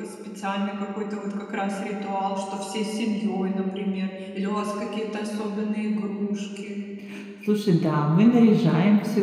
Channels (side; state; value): both; identical; correlation 1.00